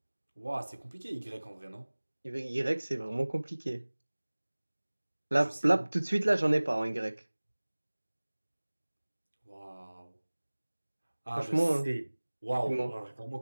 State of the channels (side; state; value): both; inverted; correlation -1.00